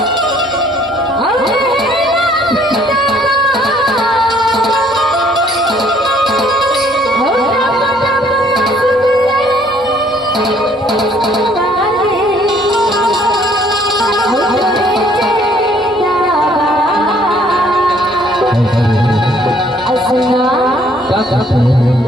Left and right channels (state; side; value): normal; both; correlation 0.62